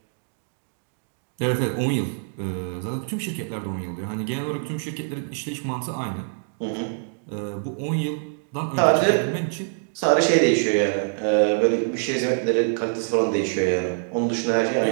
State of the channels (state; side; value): silent; left; digital silence